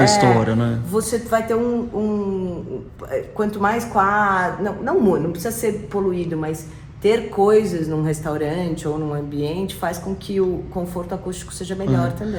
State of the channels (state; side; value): identical; both; correlation 1.00